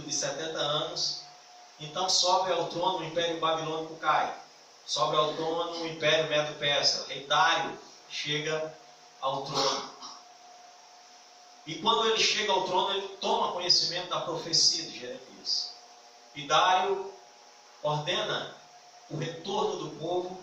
de 70 anos, então sobe ao trono o Império Babilônico cai. Sobe ao trono o Império Medo-Persa. O rei Dário chega ao trono. E quando ele chega ao trono, ele toma conhecimento da profecia de Jeremias. E Dário ordena o retorno do povo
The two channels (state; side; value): identical; both; correlation 1.00